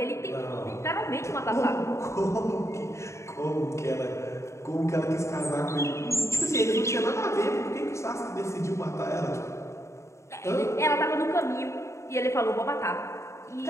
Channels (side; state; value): right; late; 0.14 ms